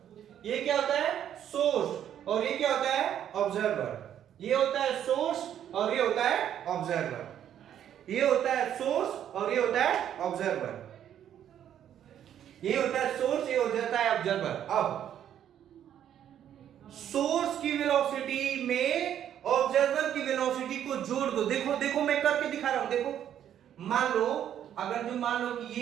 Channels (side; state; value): left; quieter; 10.1 dB